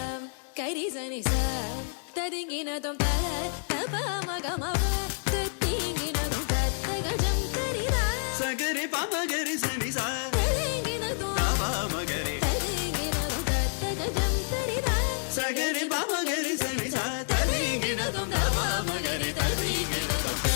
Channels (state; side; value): silent; right; digital silence